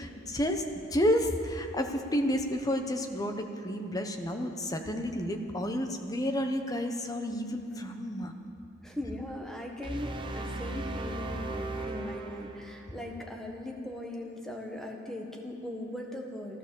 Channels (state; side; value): normal; both; correlation 0.66